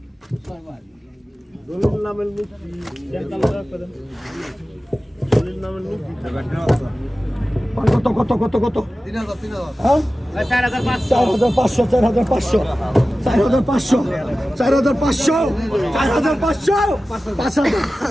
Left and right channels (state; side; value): normal; both; correlation 0.95